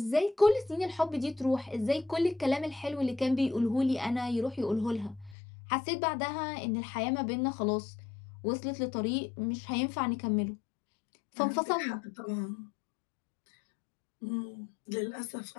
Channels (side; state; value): right; drops out; at 5.4 s